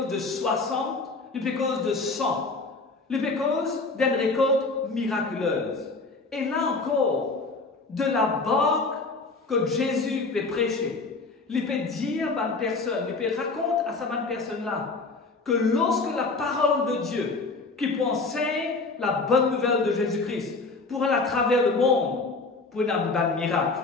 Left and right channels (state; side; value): quieter; right; 3.8 dB